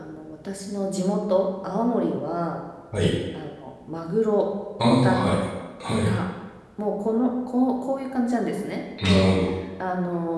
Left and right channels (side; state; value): both; identical; correlation 1.00